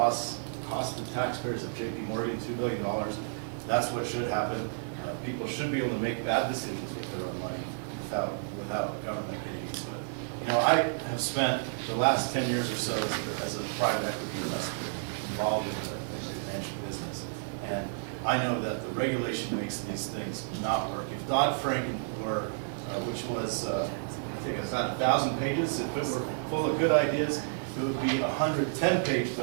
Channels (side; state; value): left; silent; digital silence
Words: cost the taxpayers of JP Morgan $2 billion. That's what should happen. People should be able to make bad decisions with their own money without government getting into it. You know, I have spent the last 10 years or so as a private equity investor involved in the financial business, and I know that the regulation makes these things not work. If Dodd-Frank were, which was, I think it's about 1,000 pages, if it were full of good ideas, it would be a 110-page